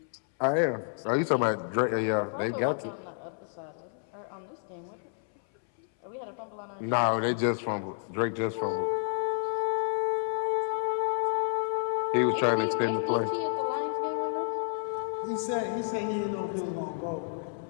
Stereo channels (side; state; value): right; silent; 58 dB below the other